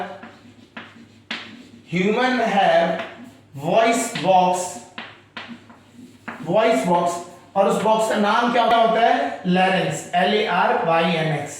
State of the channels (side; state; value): both; identical; correlation 1.00